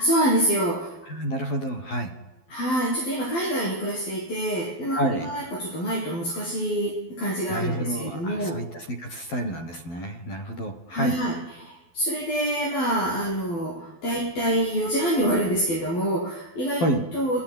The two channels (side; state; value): right; late; 12 ms